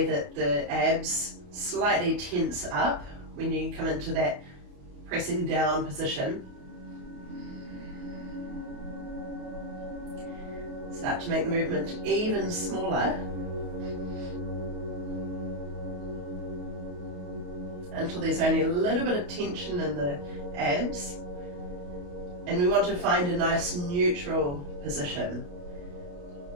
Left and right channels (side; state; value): left; late; 28 ms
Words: that the abs slightly tense up when you come into that pressing down position. Start to make the movement even smaller until there's only a little bit of tension in the abs. And we want to find a nice neutral position.